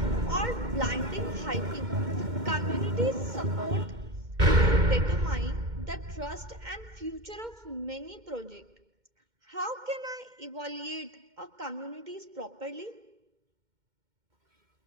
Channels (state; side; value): late; left; 2.1 ms